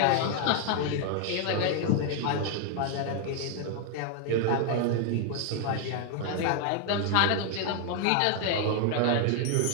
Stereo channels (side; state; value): both; different; correlation 0.00